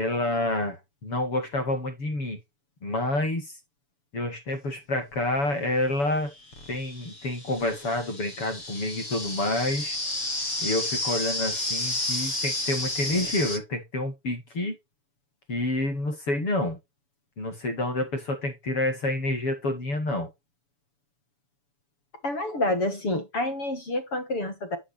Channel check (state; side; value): late; right; 7.0 ms